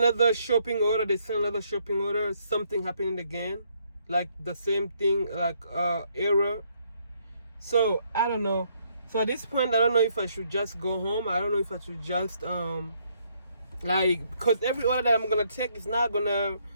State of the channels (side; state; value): both; inverted; correlation -0.71